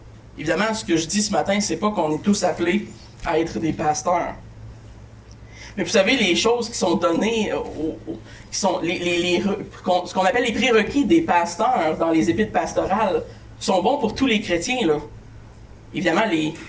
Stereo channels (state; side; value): identical; both; correlation 1.00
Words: Évidemment, ce que je dis ce matin, c'est pas qu'on est tous appelés à être des pasteurs. Mais vous savez, les choses qui sont données, qui sont ce qu'on appelle les prérequis des pasteurs dans les épîtres pastorales, sont bons pour tous les chrétiens, là. Évidemment,